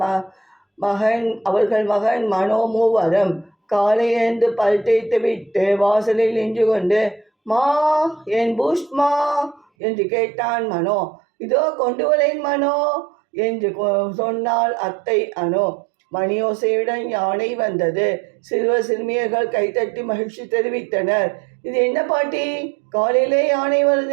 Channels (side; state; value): left; drops out; at 9.7 s